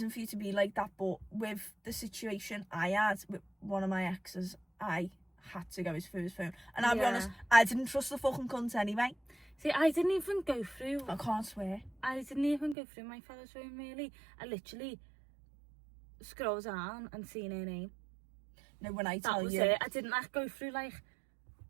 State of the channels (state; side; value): drops out; left; at 12.8 s